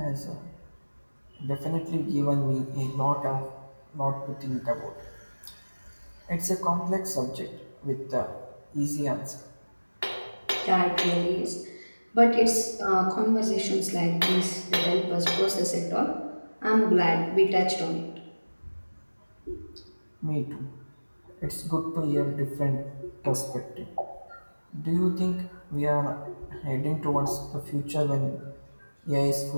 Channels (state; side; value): inverted; both; correlation -1.00